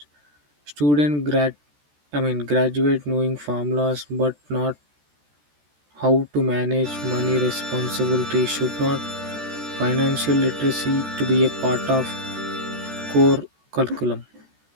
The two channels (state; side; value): late; left; 14 ms